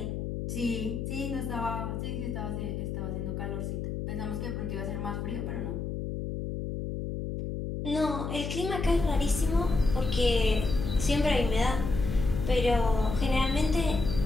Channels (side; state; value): left; noise; hum, 4 dB below the sound